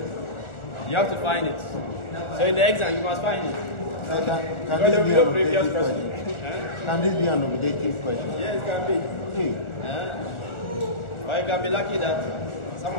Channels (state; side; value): late; right; 1.4 ms